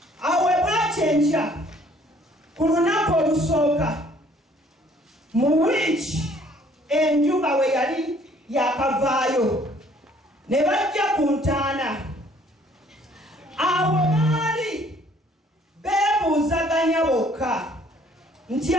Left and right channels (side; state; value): both; normal; correlation 0.60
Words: awe bwakyenkya ku lunaku olusooka mu wiiki enjuba we yali yakavaayo ne bajja ku ntaana. Awo baali beebuuzaganya bokka nti